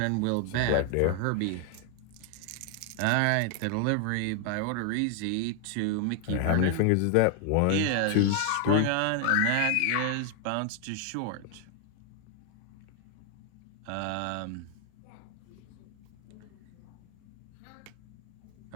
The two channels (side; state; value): both; different; correlation 0.00